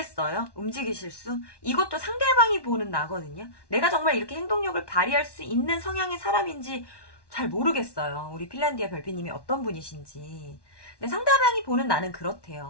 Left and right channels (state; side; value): late; right; 1.1 ms